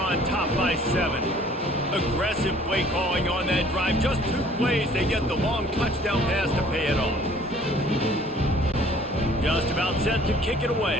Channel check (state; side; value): normal; both; correlation 0.54